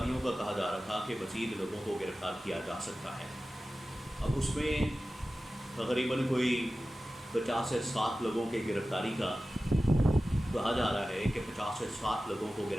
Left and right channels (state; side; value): normal; both; correlation 0.95